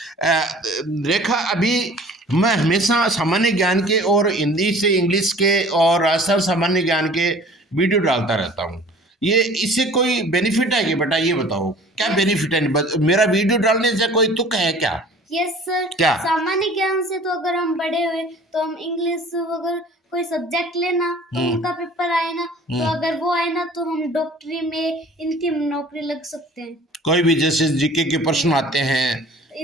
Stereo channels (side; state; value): both; normal; correlation 0.48